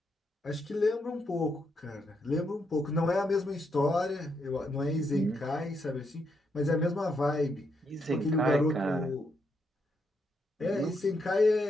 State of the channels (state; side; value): normal; both; correlation 0.79